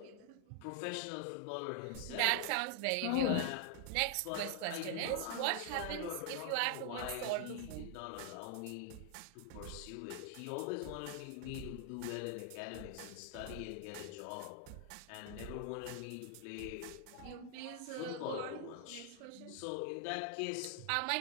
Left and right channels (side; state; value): both; different; correlation 0.00